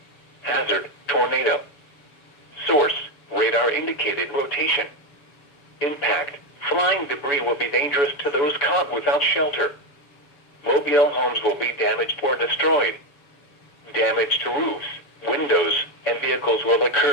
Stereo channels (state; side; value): late; right; 7.0 ms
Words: Hazard, tornado. Source, radar indicated rotation. Impact, flying debris will be dangerous to those caught without shelter. Mobile homes will be damaged or destroyed. Damage to roofs, windows, and vehicles will